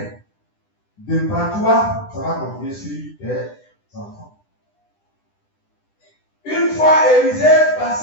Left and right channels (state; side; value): late; right; 10 ms